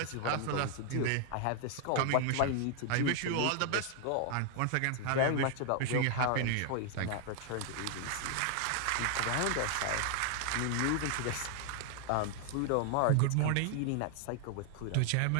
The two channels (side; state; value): both; different; correlation 0.00